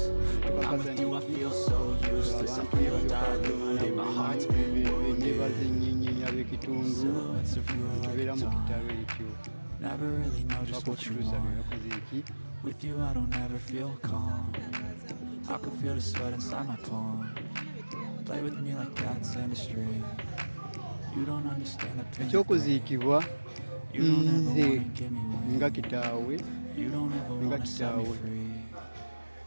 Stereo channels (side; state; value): both; inverted; correlation -1.00